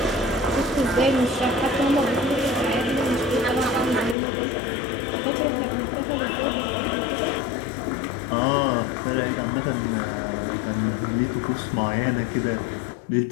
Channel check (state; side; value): drops out; right; at 4.2 s